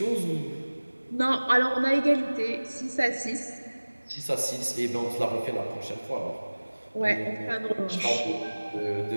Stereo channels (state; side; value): inverted; both; correlation -1.00